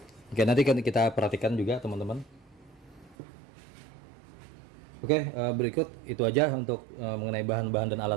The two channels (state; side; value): drops out; left; at 3.2 s